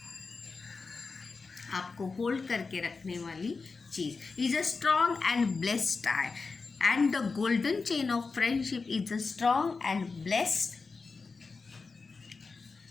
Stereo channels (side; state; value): right; quieter; 4.4 dB